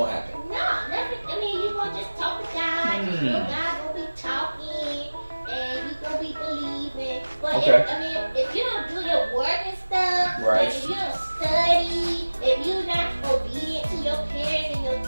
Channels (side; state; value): both; inverted; correlation -1.00